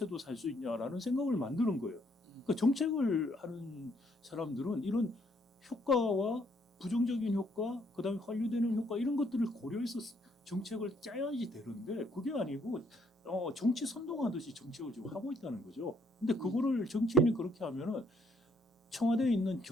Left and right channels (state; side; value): normal; both; correlation 0.69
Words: 살 수 있냐라는 생각을 만드는 거예요. 그러니까 정책을 하는 사람들은 이런 효과와 부정적인 효과, 그다음에 환류되는 효과 이런 것들을 고려해서 정책을 짜야지 되는데 그게 아니고 정치 선동하듯이 정책을 지금 하고 있다는 거죠. 근데 그거를 정치인이 그렇게 하면은 청와대에 있는